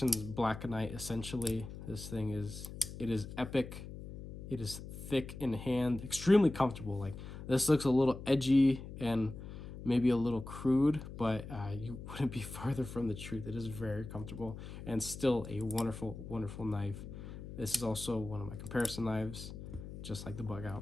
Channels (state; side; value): noise; left; hum, 11 dB below the sound